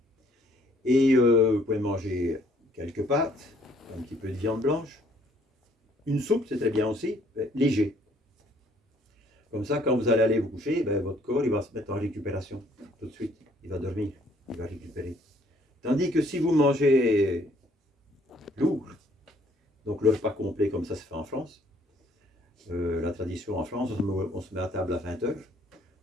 Et vous pouvez manger quelques pâtes, un petit peu de viande blanche. Une soupe, c'est très bien aussi, léger. Comme ça, quand vous allez aller vous coucher, votre corps il va se mettre en récupération tout de suite. Il va dormir, il va récupérer. Tandis que si vous mangez lourd, donc le repas complet comme ça se fait en France, la tradition en France, on se met à table à 20h,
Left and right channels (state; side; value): normal; both; correlation 0.63